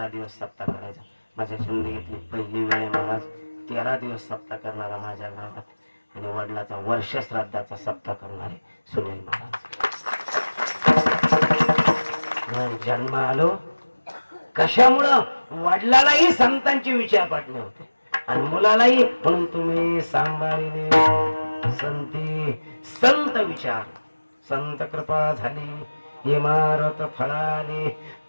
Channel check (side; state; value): both; inverted; correlation -1.00